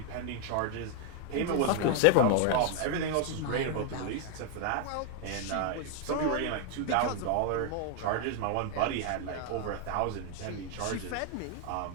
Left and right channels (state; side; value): different; both; correlation 0.00